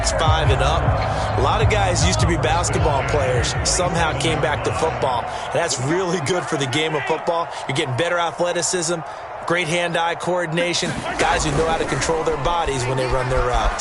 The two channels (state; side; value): identical; both; correlation 1.00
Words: and up. A lot of guys used to be basketball players, somehow came back to football. And that's really good for the game of football. You're getting better athleticism, great hand-eye coordination, guys who know how to control their bodies when they run their